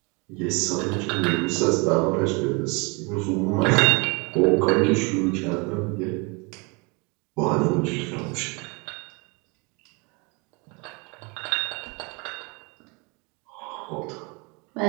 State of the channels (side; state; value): left; quieter; 29.9 dB